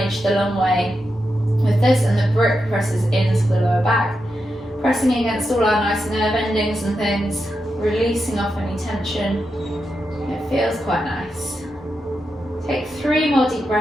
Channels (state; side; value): normal; both; correlation 0.87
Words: the long way with this, and the brick presses into the lower back, pressing against all our nice nerve endings and things, releasing off any tension. It feels quite nice. Take 3 more deep